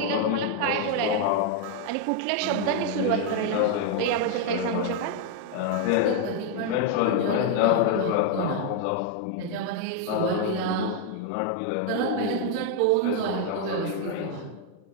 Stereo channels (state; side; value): different; both; correlation 0.00